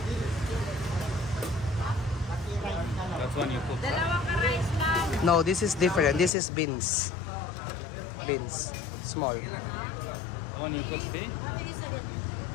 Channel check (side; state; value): right; drops out; at 6.3 s